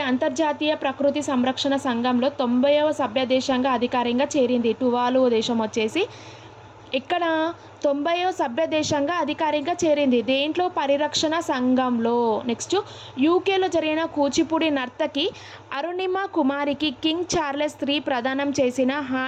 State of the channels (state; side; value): identical; both; correlation 1.00